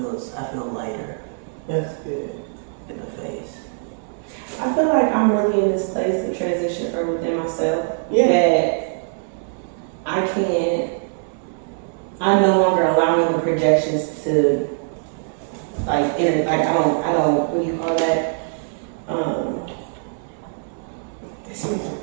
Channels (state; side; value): silent; left; 64 dB below the other